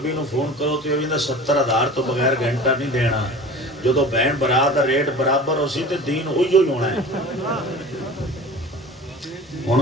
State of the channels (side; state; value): both; normal; correlation 0.38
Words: نو فون کرو تے او بھی 70,000 تو بغیر گھنٹہ نہیں دینا جدو بہن برات دا ریٹ برابر ہو سی تے دین ہوئی ہونا ہے ہن